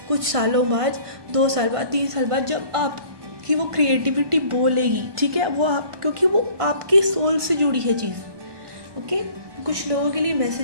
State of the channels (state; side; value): late; left; 1.2 ms